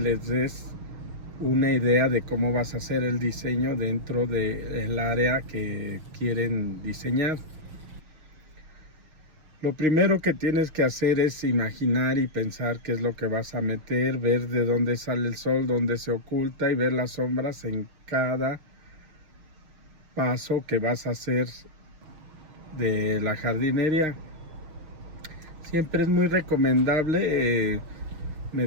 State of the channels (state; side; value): late; left; 6.5 ms